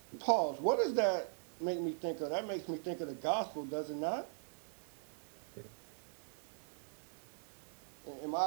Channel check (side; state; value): left; silent; 51 dB below the other